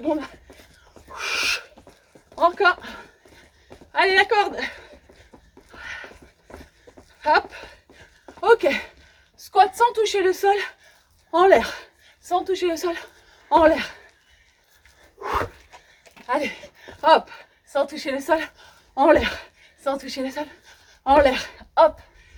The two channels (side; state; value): both; identical; correlation 1.00